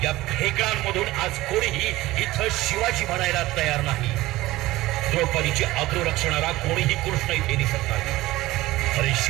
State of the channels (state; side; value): quieter; left; 17.8 dB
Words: या खेकडांमधून आज कोणीही इथं शिवाजी म्हणायला तयार नाही. द्रौपदीची अब्रू रक्षणारा कोणीही कृष्ण इथे दिसत नाही. अरे